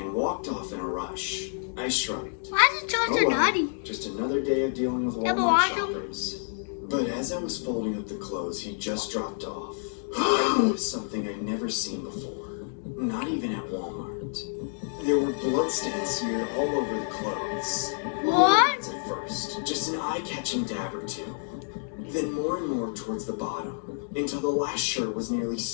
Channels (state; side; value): silent; right; digital silence